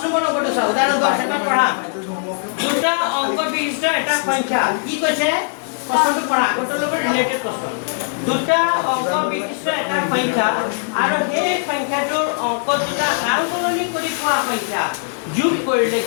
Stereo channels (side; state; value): right; silent; digital silence